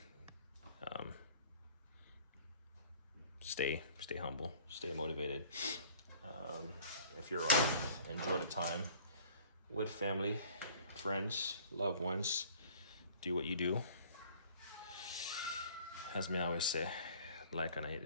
stay humble, stay motivated. If you're off, enjoy the time with family, friends, loved ones. Do what you do. As me always say, like and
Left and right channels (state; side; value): inverted; both; correlation -0.51